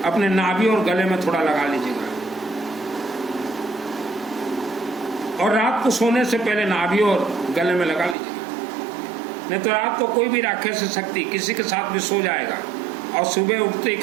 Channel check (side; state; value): left; drops out; at 8.2 s